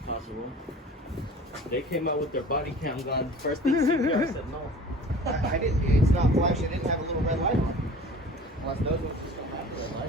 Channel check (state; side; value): normal; both; correlation 0.43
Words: They came out with their body cam gun. First thing CPR said no. I didn't, it's not flashing, it didn't have a little red light on it. Unless those ones just don't have a red